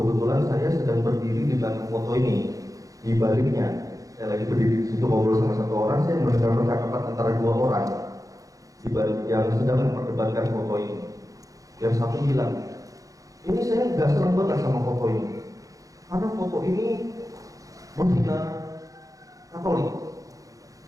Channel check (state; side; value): late; left; 0.17 ms